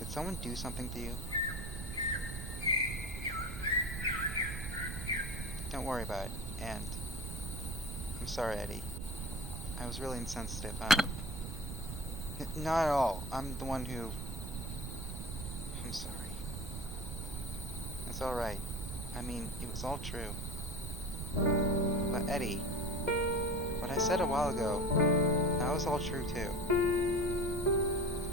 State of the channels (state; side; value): noise; right; rumble, 6 dB below the sound